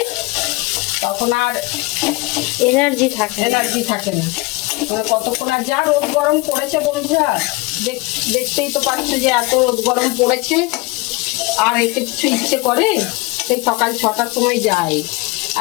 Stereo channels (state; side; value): quieter; right; 24.4 dB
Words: তখন আর এনার্জি থাকে এনার্জি থাকে না। মানে কতক্ষণ, আর যা রোদ গরম পড়েছে বন্ধুরা, দেখতেই তো পাচ্ছ যে এত রোদ গরম পড়েছে, আর এতে কিছু ইচ্ছে করে? সেই সকাল 6টার সময় যায়